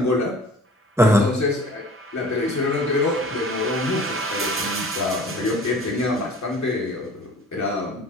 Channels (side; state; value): both; normal; correlation 0.46